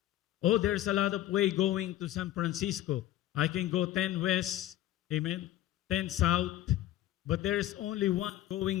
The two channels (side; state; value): right; quieter; 13.7 dB